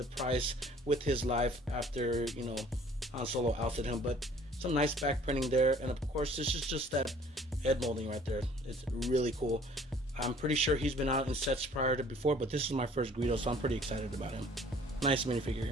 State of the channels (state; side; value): normal; both; correlation 0.54